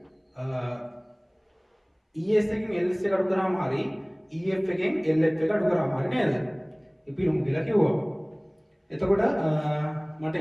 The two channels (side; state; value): both; identical; correlation 1.00